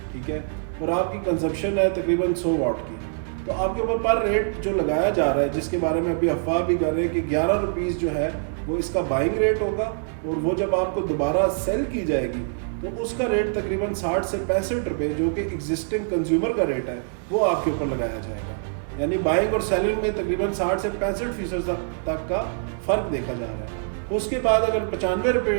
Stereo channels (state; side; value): silent; left; digital silence